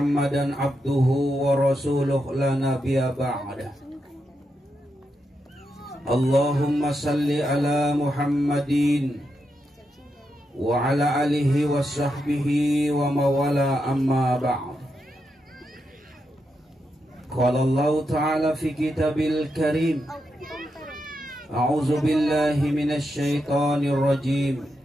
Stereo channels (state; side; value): normal; both; correlation 0.84